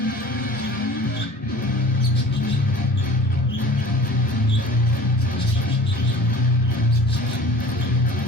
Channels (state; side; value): normal; both; correlation 0.43